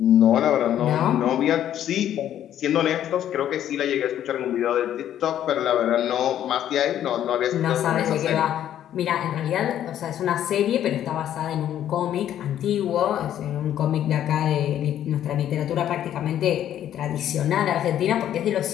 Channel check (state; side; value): quieter; right; 11.0 dB